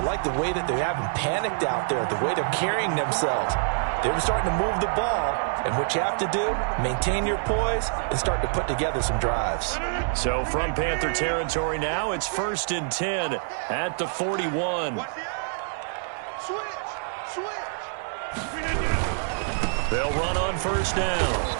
like the way that they haven't panicked out there, the way they're carrying themselves. They're starting to move the ball, and what you have to do, maintain your poise and start to put together some drives. So from Panther territory now, it's 1st and 10 at the 41. They'll run on 1st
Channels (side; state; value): left; silent; digital silence